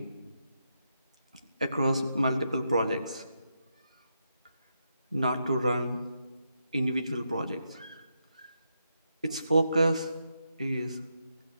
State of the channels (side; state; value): both; inverted; correlation -0.83